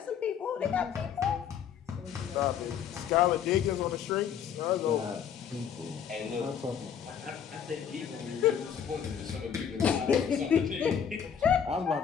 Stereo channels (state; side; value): quieter; right; 8.2 dB